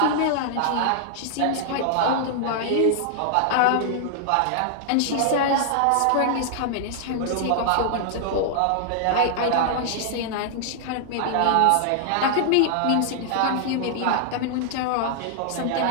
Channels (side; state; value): both; different; correlation -0.01